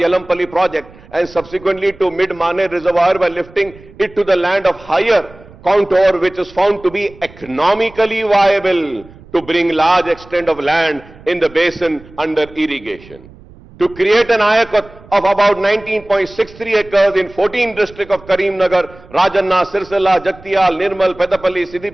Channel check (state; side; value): noise; right; rumble, 22 dB below the sound